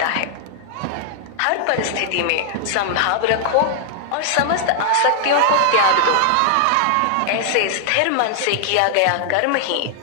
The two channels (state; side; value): different; both; correlation -0.01